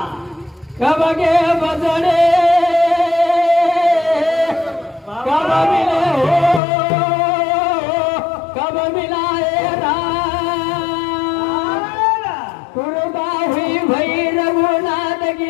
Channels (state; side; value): drops out; right; at 6.6 s